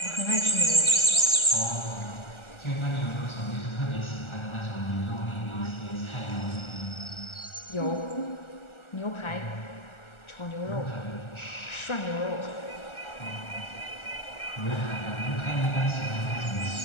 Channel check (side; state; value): right; late; 1.4 ms